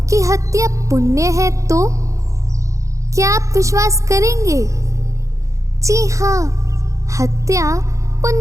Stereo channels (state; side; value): late; left; 0.15 ms